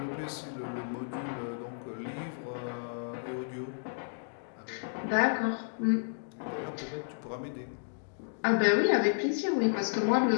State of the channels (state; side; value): silent; right; digital silence